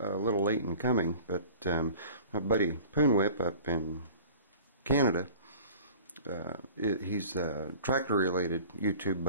late in coming, but my buddy Poonwhip up in Canada, he's a tractor related YouTube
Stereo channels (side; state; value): both; inverted; correlation -0.44